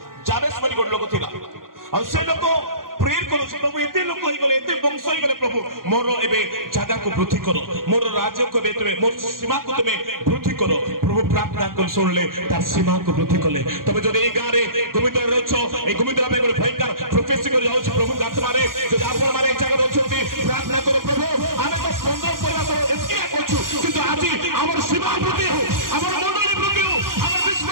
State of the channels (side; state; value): left; late; 0.91 ms